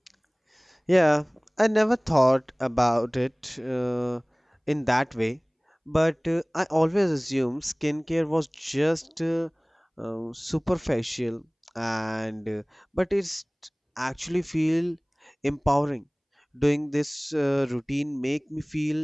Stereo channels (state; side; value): identical; both; correlation 1.00